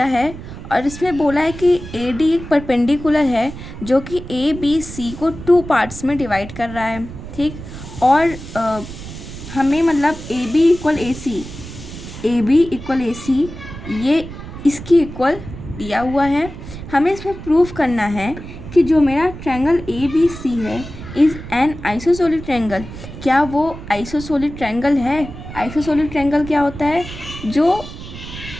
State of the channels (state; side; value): noise; right; rumble, 12 dB below the sound